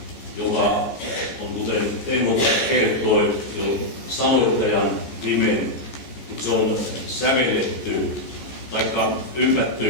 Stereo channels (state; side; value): late; right; 14 ms